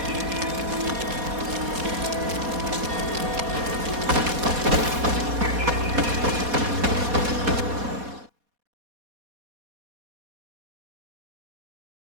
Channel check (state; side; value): late; left; 4.2 ms